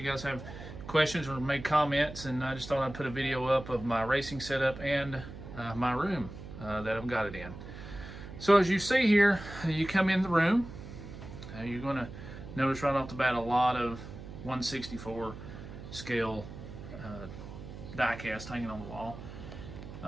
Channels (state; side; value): noise; right; hum, 12 dB below the sound